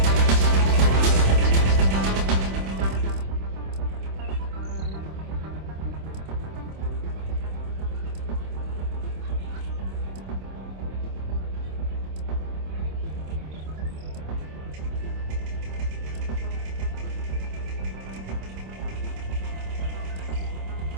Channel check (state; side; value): late; left; 26 ms